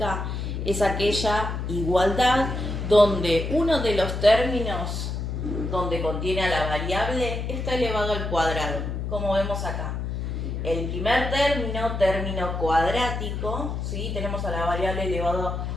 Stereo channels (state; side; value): noise; left; hum, 3 dB below the sound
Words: Es aquella igualdad donde uno de los términos donde contiene a la variable está elevado al cuadrado, como vemos acá. El primer término cuadrático, ¿sí? Tenemos a la variable elevado